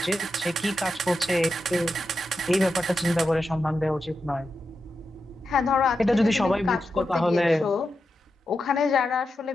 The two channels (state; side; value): normal; both; correlation 0.88